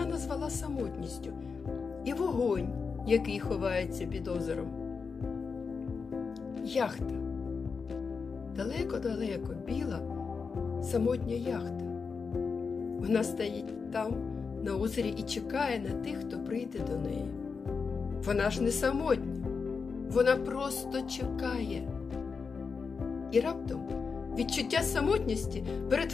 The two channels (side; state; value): right; quieter; 5.2 dB